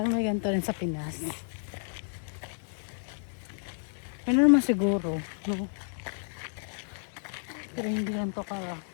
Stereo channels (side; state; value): right; silent; digital silence